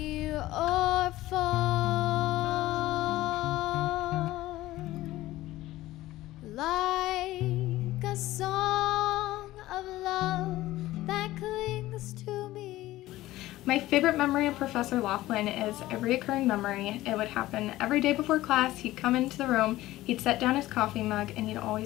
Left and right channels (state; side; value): quieter; right; 16.4 dB